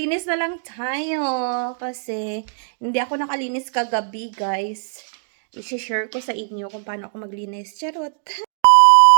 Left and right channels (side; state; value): left; silent; digital silence